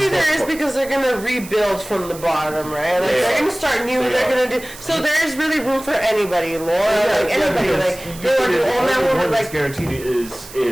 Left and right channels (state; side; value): noise; right; hiss, 16 dB below the sound